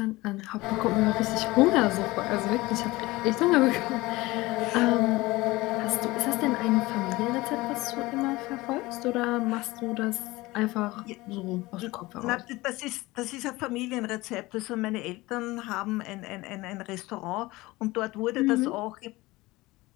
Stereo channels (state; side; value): quieter; right; 20.5 dB